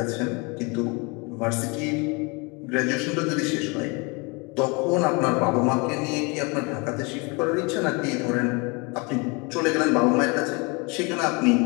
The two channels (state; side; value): quieter; right; 29.6 dB